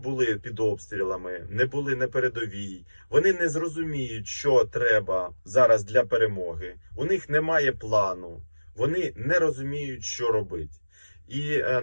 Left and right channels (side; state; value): both; inverted; correlation -1.00